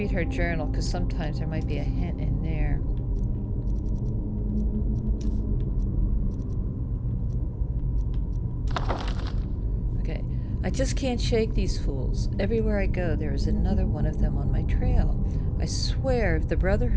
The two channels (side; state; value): both; identical; correlation 1.00